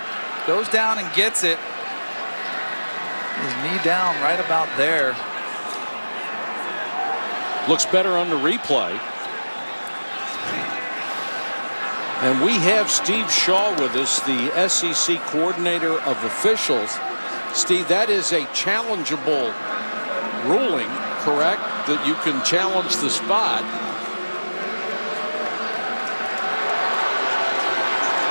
Goes down and gets it. His knee down right about there. Looks better on the replay. And we have Steve Shaw with us, the SEC coordinator of officials. Steve, that is a challengeable ruling, correct? That you can challenge the spot.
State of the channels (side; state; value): both; inverted; correlation -1.00